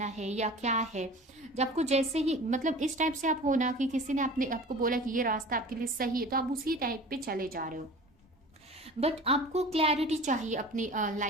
है या क्या है। जब आपको जैसे ही मतलब इस टाइप से आप हो ना कि किसी ने आपको बोला कि ये रास्ता आपके लिए सही है, तो आप उसी टाइप पे चले जा रहे हो। बट आपको क्लैरिटी चाहिए अपनी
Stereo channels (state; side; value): normal; both; correlation 0.40